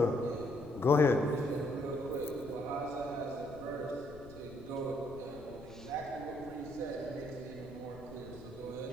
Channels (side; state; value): left; noise; rumble, 17 dB below the sound